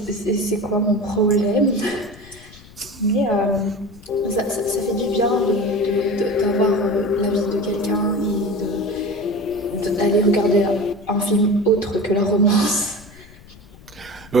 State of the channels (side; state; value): left; noise; rumble, 21 dB below the sound